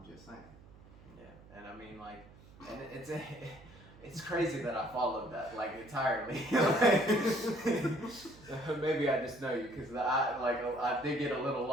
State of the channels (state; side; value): noise; right; hum, 22 dB below the sound